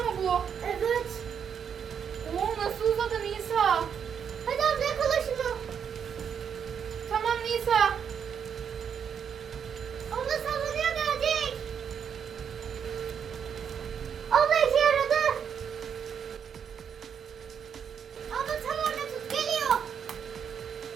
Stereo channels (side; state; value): left; quieter; 7.6 dB